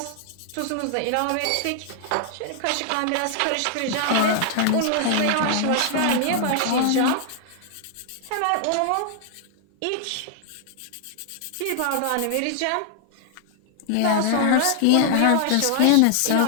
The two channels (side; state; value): both; different; correlation 0.00